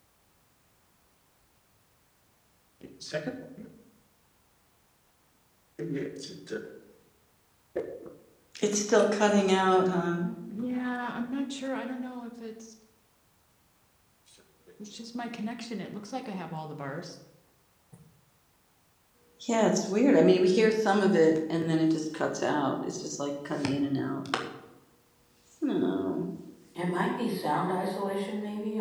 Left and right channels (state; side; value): identical; both; correlation 1.00